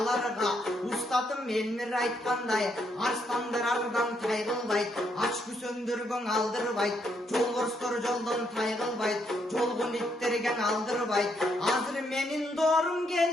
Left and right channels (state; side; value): normal; both; correlation 0.75